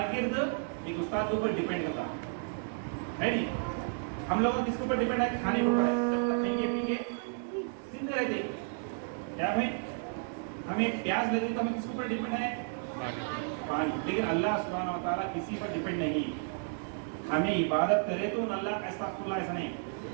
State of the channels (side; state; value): left; silent; digital silence